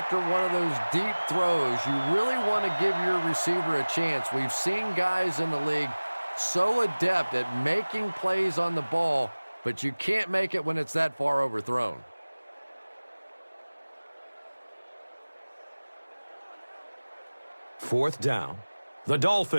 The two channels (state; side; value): inverted; both; correlation -1.00